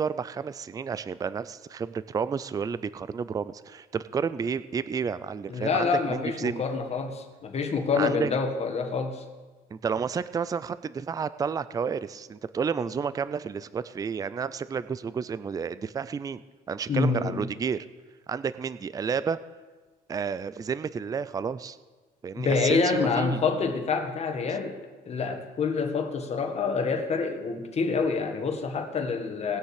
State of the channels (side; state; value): both; normal; correlation 0.53